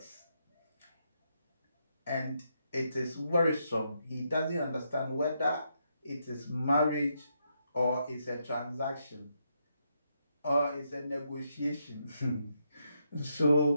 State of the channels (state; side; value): inverted; both; correlation -0.80